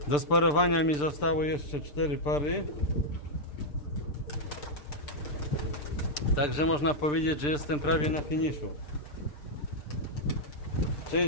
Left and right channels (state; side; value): late; right; 6.8 ms